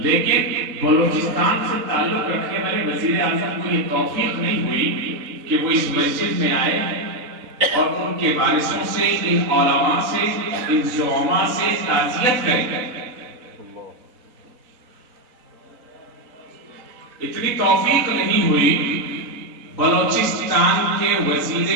بلوچستان سے تعلق رکھنے والے وزیر اعظم کو یہ توفیق نہیں ہوئی کہ وہ اس مسجد میں آئے اور ان کے وارثوں سے، ان علماء سے، ان زعماء سے تعزیت کریں۔ اتنی توفیق نہیں ہوئی بلوچستان کے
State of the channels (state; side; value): late; left; 4.0 ms